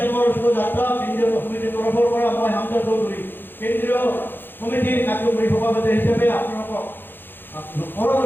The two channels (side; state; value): right; late; 0.098 ms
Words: মঞ্চ যাত্ৰা কেন্দ্ৰীয় সমিতিৰ তৰফৰ পৰা মই হামজা চৌধুৰী কেন্দ্ৰীয় সমিতিৰ কাৰ্যকৰী সভাপতি হিচাপে আপোনালোকক